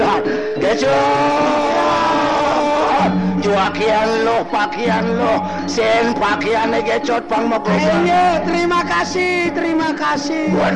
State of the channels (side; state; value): both; identical; correlation 1.00